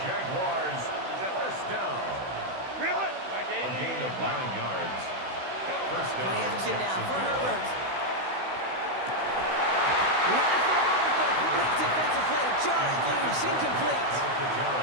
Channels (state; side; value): late; left; 16 ms